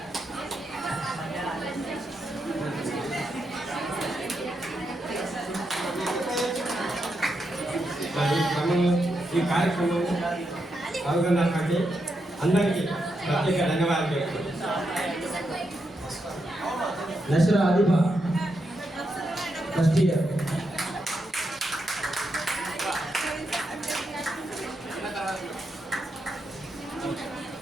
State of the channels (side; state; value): both; normal; correlation 0.83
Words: ఈ కార్యక్రమం పాల్గొన్నటువంటి అందరికీ ప్రత్యేక ధన్యవాదాలు తెలుపుతున్నాను. Nashra Adiba first year.